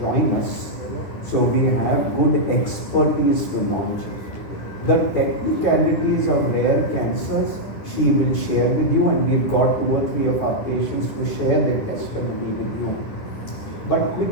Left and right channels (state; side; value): late; right; 10 ms